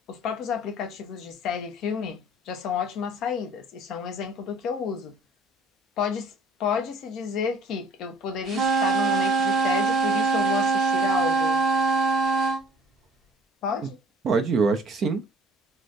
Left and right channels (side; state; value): both; normal; correlation 0.53